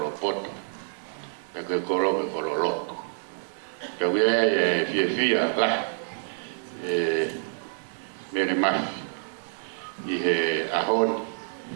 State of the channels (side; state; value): left; silent; digital silence